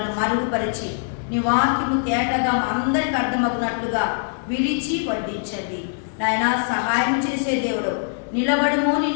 మరుగుపరిచి నీ వాక్యము తేటగా అందరికి అర్థమగునట్లుగా విరిచి వడ్డించండి నాయనా. సహాయం చేసే దేవుడు, నిలబడము,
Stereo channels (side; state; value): right; silent; 64 dB below the other